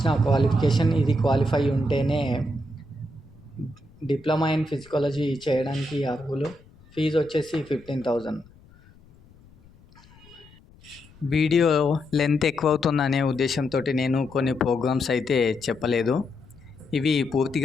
క్వాలిఫికేషన్, ఇది క్వాలిఫై ఉంటేనే diploma in ఫిజికాలజీ చేయడానికి అర్హులు. Fee వచ్చేసి 15,000. Video length ఎక్కువ అవుతుందనే ఉద్దేశంతో నేను కొన్ని ప్రోగ్రామ్స్ అయితే చెప్పలేదు. ఇవి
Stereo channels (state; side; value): noise; left; rumble, 26 dB below the sound